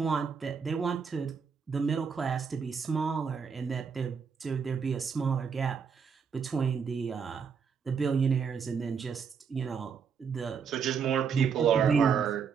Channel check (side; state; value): left; quieter; 6.3 dB